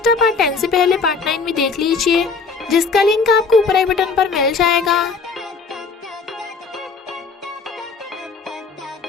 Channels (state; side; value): quieter; right; 4.7 dB